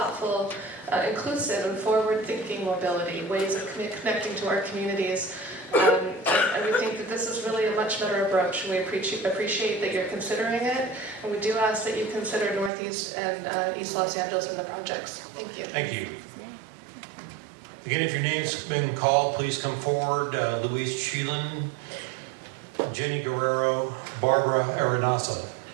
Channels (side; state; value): left; drops out; at 12.7 s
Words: inclusive, and forward-thinking mobility, ways of connecting to our communities. And we think that this is really a much better approach. We appreciate that you're considering it, and we do ask that you consider Northeast and East Los Angeles in the projects. Thank you. Thank you. Again, if your name's been called, please come forward. Louise Sheelan, Jenny Guerrero, Barbara Arenasa.